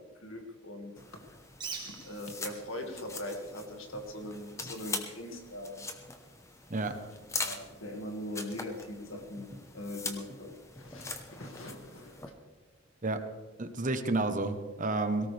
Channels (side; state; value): both; normal; correlation 0.27